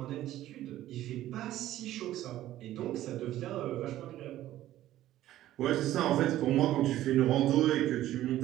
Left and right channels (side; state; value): left; quieter; 13.9 dB